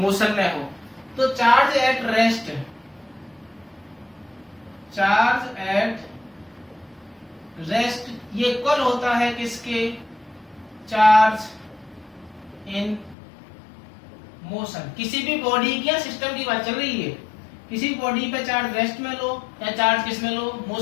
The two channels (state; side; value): drops out; right; at 13.2 s